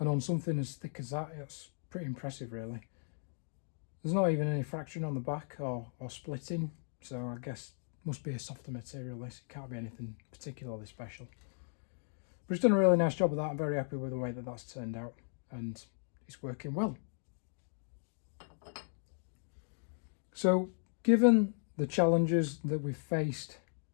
on something as thick as that, it's pretty impressive really. There's not even any fraction on the back or splitting. So I guess it must be a softer material this, it can't be anything particularly special. But it's done a really nice job of that. I'm very happy with the way that that's turned out and it's working well. So given the challenges that we've faced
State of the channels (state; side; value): silent; right; digital silence